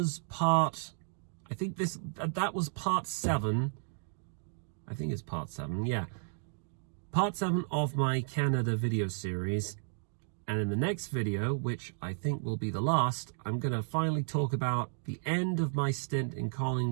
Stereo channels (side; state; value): left; silent; digital silence